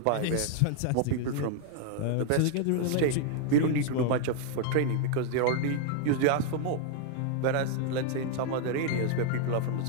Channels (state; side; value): different; both; correlation 0.00